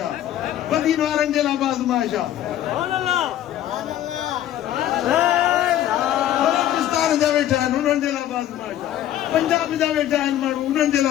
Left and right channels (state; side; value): quieter; right; 12.1 dB